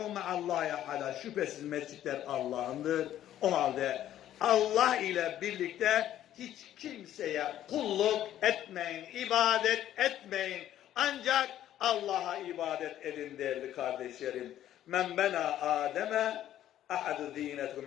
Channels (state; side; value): quieter; right; 12.0 dB